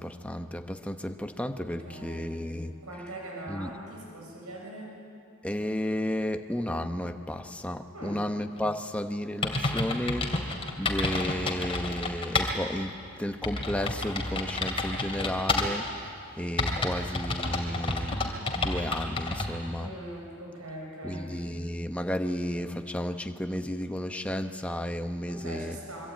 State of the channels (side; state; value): both; normal; correlation 0.65